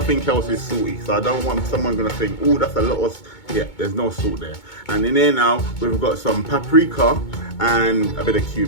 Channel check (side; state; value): right; late; 2.2 ms